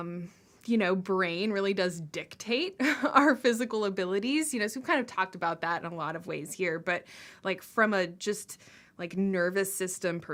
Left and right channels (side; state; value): both; identical; correlation 1.00